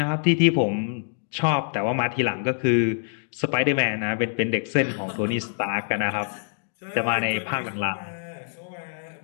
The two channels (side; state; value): right; silent; digital silence